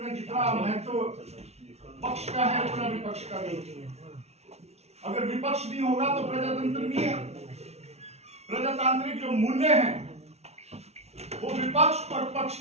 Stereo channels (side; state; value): left; late; 0.31 ms